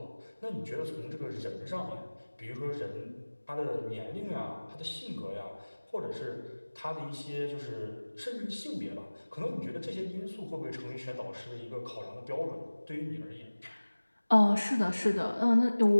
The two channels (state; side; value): inverted; both; correlation -1.00